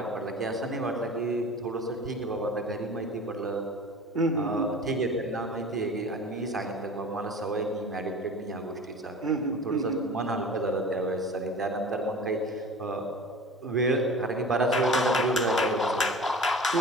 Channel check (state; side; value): normal; both; correlation 0.39